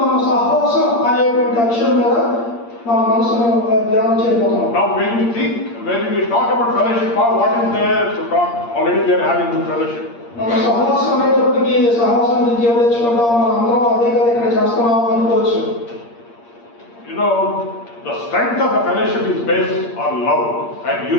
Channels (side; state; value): right; late; 8.6 ms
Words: మనం సహవాసం అనేటువంటి అంశం మీద మన మనసును ధ్యానం చేయబోతున్నాం. Now when we talk about fellowship, what is there to talk? Already we are having good fellowship. మనం సహవాసం అనేటప్పటికి సహవాసం నుంచి ఏం తెచ్చుకుంటాం, మనం అందరం అదే కదా ఇక్కడ చేస్తున్నాం అనుకోవచ్చు. You know, the strength of the fellowship is based on love and